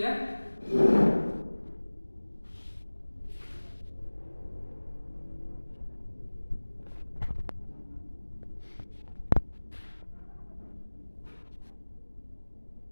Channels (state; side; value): inverted; both; correlation -1.00